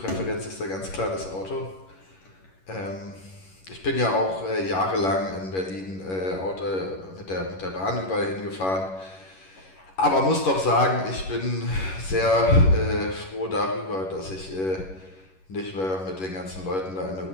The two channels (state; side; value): late; right; 11 ms